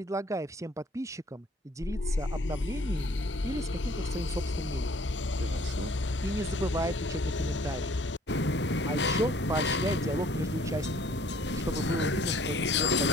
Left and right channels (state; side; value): normal; both; correlation 0.57